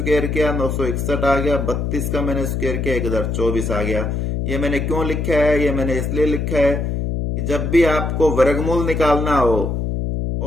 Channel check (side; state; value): left; noise; hum, 1 dB below the sound